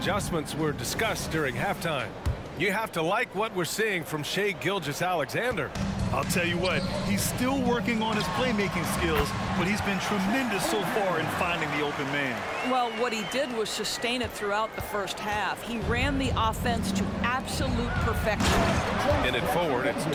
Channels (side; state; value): both; identical; correlation 1.00